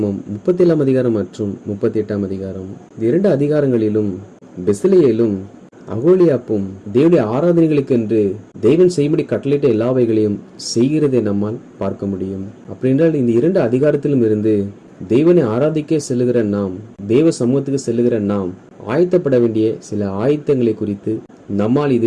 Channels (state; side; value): identical; both; correlation 1.00